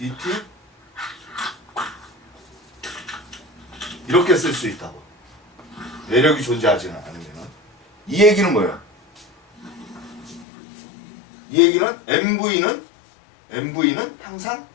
이렇게 쓸 수 있다고. 외력이 존재하지는 않으면. 이 얘기는 뭐예요? 이 얘기는 MV는 항상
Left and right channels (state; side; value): drops out; right; at 10.5 s